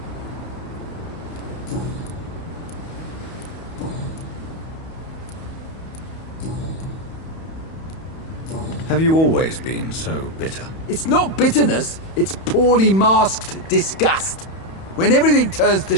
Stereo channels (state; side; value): late; right; 31 ms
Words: Have you always been so bitter? It's not bitterness, it's poorly masked disgust. When everything turns to